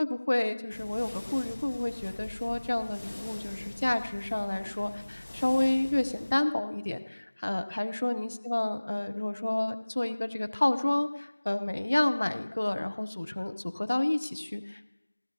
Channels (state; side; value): inverted; both; correlation -1.00